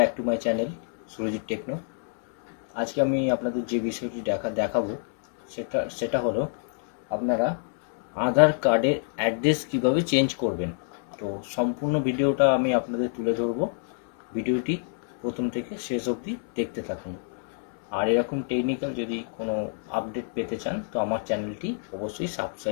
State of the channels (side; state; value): right; silent; 60 dB below the other